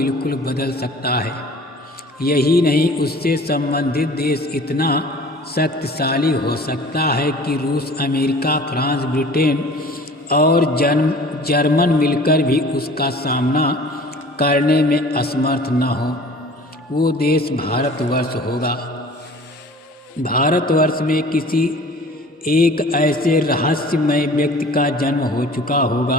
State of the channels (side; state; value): both; normal; correlation 0.46